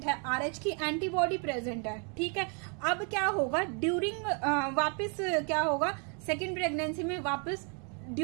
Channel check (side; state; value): left; quieter; 37.6 dB